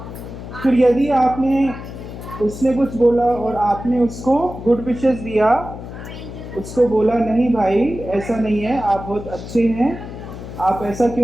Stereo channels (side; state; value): left; noise; hum, 11 dB below the sound